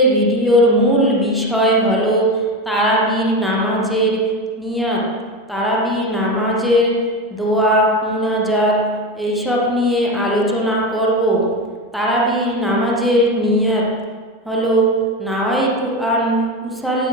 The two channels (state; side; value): normal; both; correlation 0.20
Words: ভিডিওর মূল বিষয় হলো তারাবির নামাজের নিয়াত, তারাবি নামাজের দোয়া মুনাজাত এইসব নিয়ে আলোচনা করব। তারাবির নামাজের নিয়াত হলো নাওয়াইতু আন